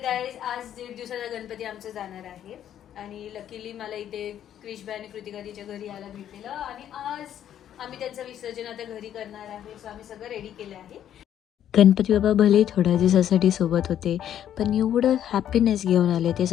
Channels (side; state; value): right; quieter; 10.5 dB